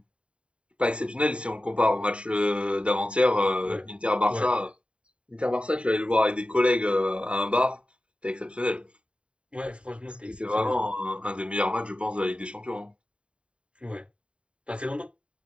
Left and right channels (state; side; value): late; left; 0.058 ms